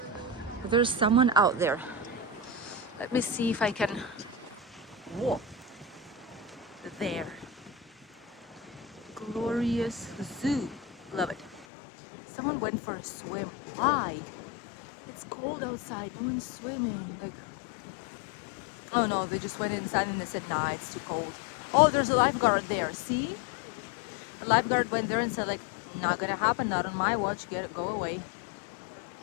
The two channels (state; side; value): drops out; right; at 11.7 s